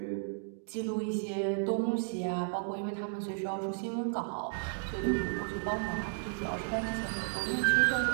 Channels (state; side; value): silent; left; digital silence